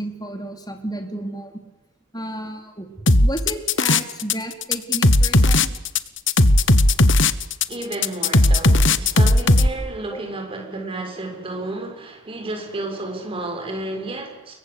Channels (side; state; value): both; normal; correlation 0.73